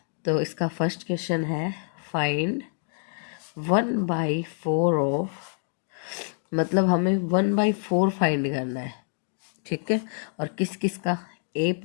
तो इसका फर्स्ट क्वेश्चन है फाइंड 1/4 ऑफ, मतलब हमें 1/4 फाइंड करना है। ठीक है, और किस किस का? ए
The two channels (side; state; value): right; silent; 60 dB below the other